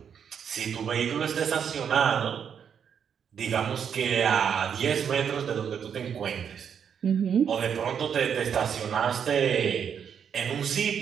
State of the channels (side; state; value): left; quieter; 7.7 dB